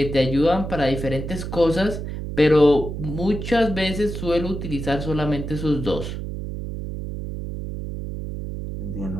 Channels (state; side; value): noise; right; hum, 6 dB below the sound